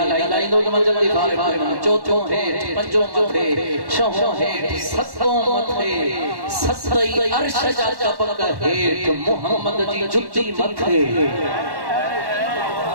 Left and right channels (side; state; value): left; late; 1.1 ms